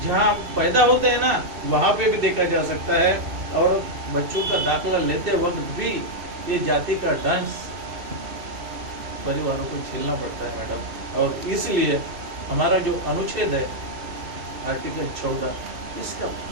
जहाँ पैदा होते हैं ना, वहाँ पे भी देखा जा सकता है। और बच्चों का दाखला लेते वक्त भी ये जाति का डांस परिवारों को झेलना पड़ता है मैडम। और इसलिए हमारा जो अनुच्छेद है आर्टिकल 14, इसका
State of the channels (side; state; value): left; late; 2.6 ms